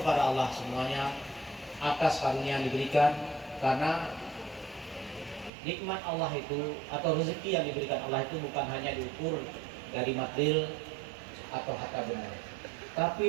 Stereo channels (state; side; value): drops out; left; at 5.5 s